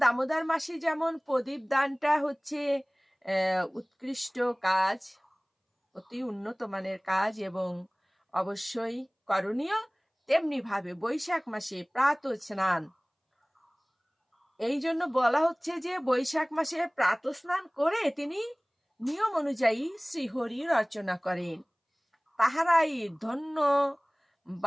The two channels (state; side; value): identical; both; correlation 1.00